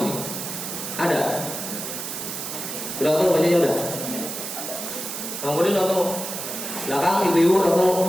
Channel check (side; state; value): right; noise; hiss, 6 dB below the sound